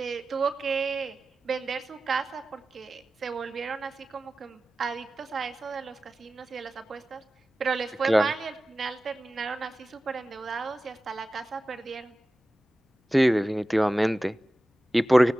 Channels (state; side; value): normal; both; correlation 0.96